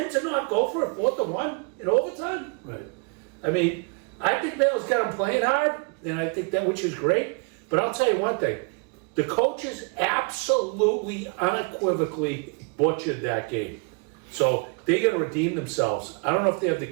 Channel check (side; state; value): left; quieter; 33.9 dB